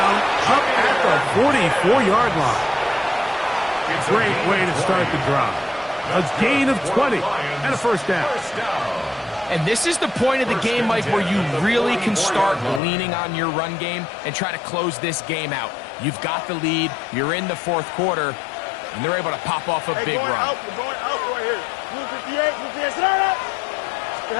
up at the 44-yard line. Great way to start the drive. A gain of 20 and a 1st down. And this is the point of the game, Mike, where you really can start leaning on your run game and try to close this game out. You've got the lead, you're in the 4th quarter, and they're able to pop off a big run. We're going out right here. Blue 58, sit out.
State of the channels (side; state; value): right; drops out; at 12.8 s